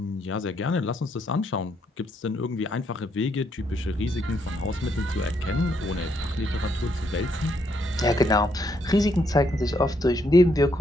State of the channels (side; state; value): both; normal; correlation 0.74